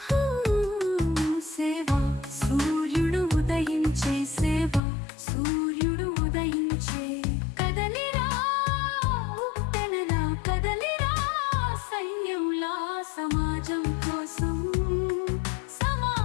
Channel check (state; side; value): drops out; right; at 4.8 s